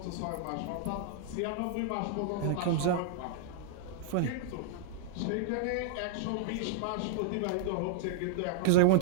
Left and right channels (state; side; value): different; both; correlation -0.01